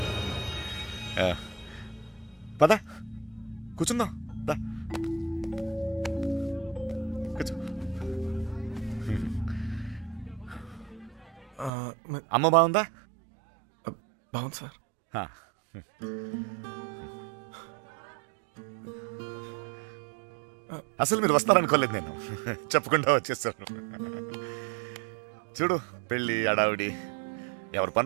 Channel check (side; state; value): left; drops out; at 11.7 s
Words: పద కూర్చుందాం. దా కూర్చో. అమ్మ బాగుందా? బాగుంది సార్. అసలు మీరు వస్తారనుకోలేదు, నేను చెప్పకుండా వచ్చేసాను. చూడు పెళ్ళి అడావిడి ఎవరి